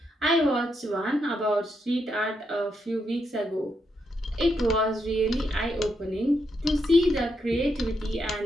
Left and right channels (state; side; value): normal; both; correlation 0.81